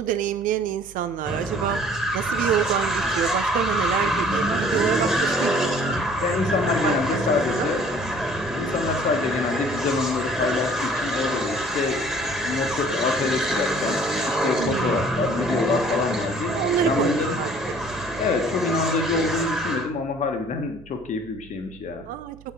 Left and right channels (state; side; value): noise; right; hum, 22 dB below the sound